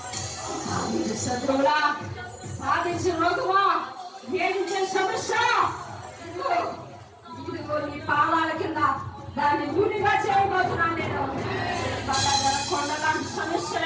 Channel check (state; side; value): identical; both; correlation 1.00